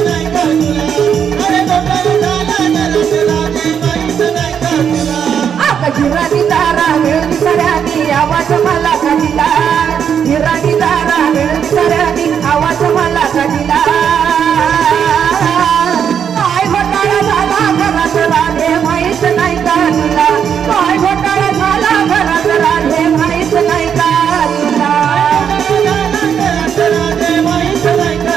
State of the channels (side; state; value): left; quieter; 7.9 dB